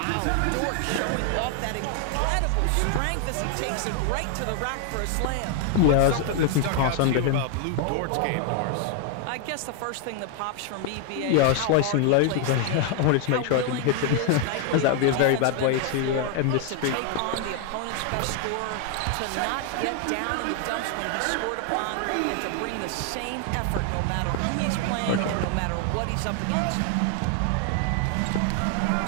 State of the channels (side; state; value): both; different; correlation 0.00